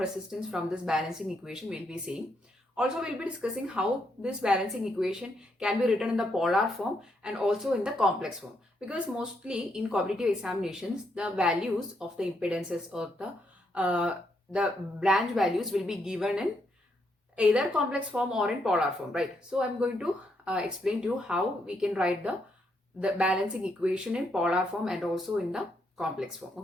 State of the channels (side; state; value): both; normal; correlation 0.78